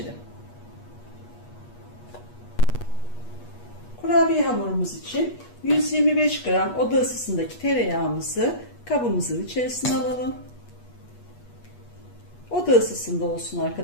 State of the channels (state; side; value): late; right; 8.3 ms